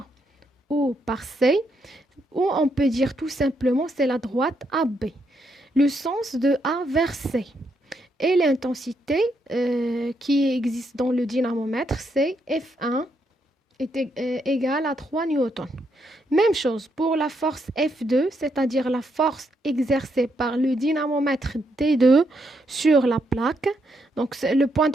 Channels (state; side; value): normal; both; correlation 0.77